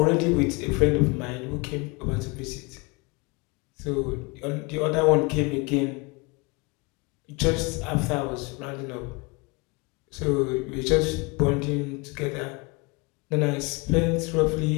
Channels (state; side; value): quieter; right; 27.7 dB